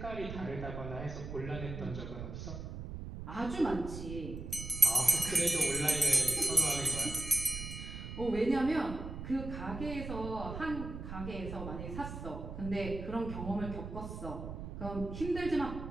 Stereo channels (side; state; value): right; noise; rumble, 8 dB below the sound